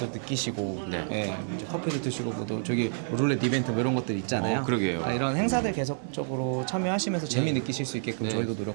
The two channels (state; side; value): silent; left; digital silence